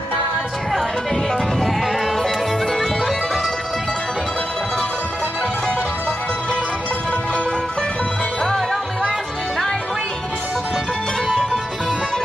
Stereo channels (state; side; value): normal; both; correlation 0.89